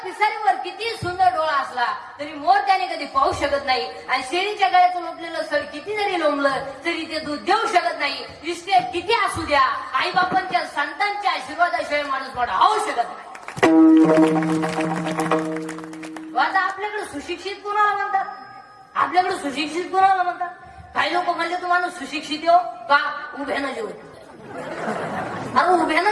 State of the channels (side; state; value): both; identical; correlation 1.00